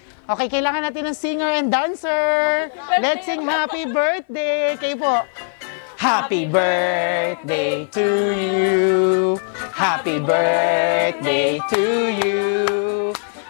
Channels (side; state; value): right; silent; 58 dB below the other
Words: Okay, kailangan natin ng singer and dancer. Let's sing happy birthday. Kayo po. Happy birthday to you. Happy birthday to you.